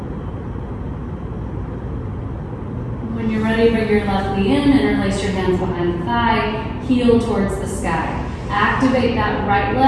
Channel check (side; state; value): both; identical; correlation 1.00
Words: When you're ready, bring your left knee in, interlace your hands behind the thigh, heel towards the sky. Activate that right